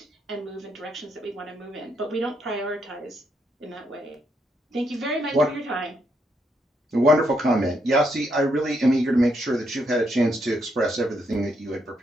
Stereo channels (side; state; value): both; normal; correlation 0.77